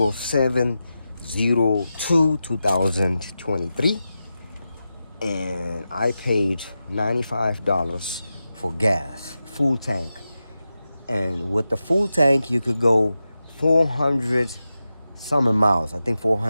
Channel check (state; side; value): inverted; both; correlation -0.91